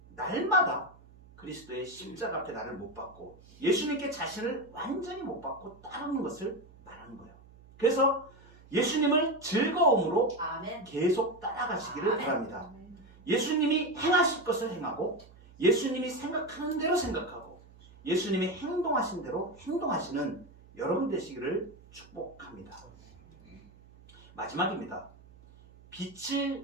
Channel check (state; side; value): noise; right; hum, 24 dB below the sound